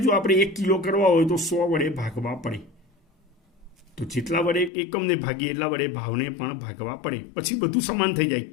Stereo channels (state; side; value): drops out; right; at 4.7 s